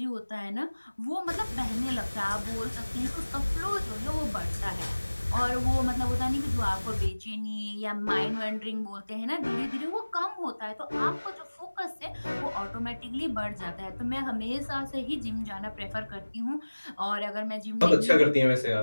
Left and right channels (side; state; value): both; inverted; correlation -1.00